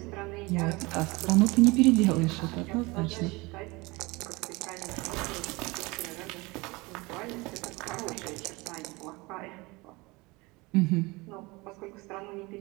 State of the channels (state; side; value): quieter; left; 24.0 dB